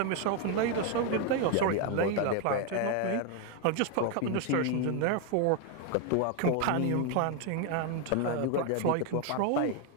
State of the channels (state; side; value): different; both; correlation 0.01